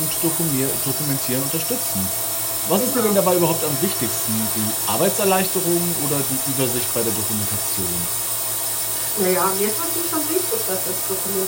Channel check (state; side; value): identical; both; correlation 1.00